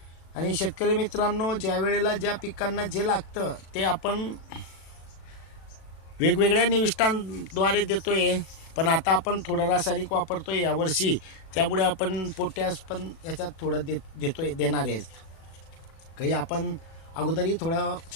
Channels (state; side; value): late; right; 37 ms